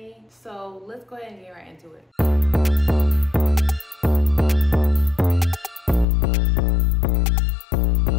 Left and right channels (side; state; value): right; drops out; at 6.1 s